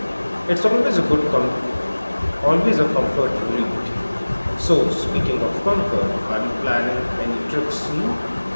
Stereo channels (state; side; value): inverted; both; correlation -1.00